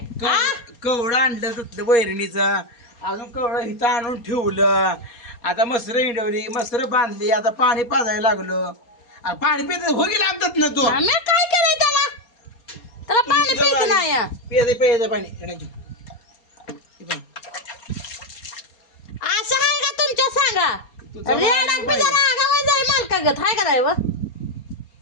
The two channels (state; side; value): late; right; 4.3 ms